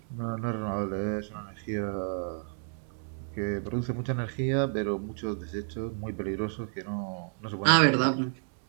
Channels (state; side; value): silent; left; 57 dB below the other